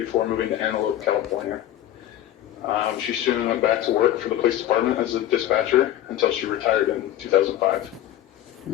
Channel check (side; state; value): right; quieter; 12.6 dB